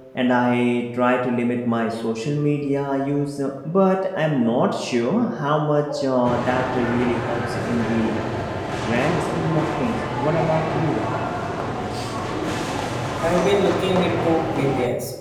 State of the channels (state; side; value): identical; both; correlation 1.00